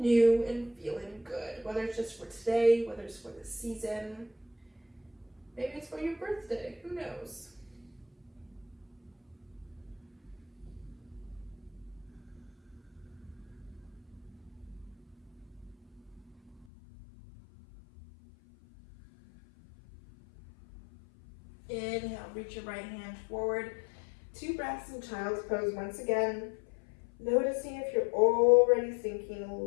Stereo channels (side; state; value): right; drops out; at 16.7 s